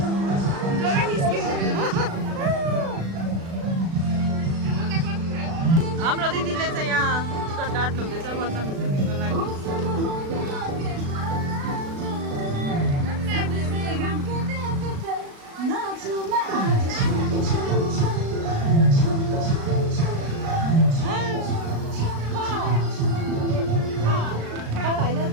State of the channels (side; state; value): left; late; 36 ms